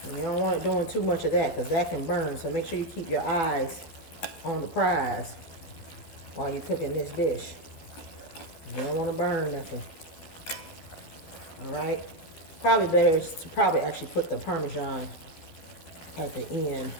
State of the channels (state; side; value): late; right; 13 ms